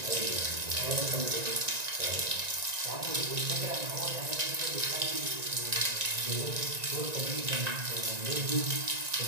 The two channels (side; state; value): left; late; 1.9 ms